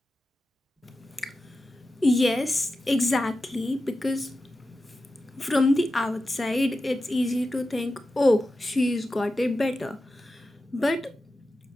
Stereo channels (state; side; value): normal; both; correlation 0.92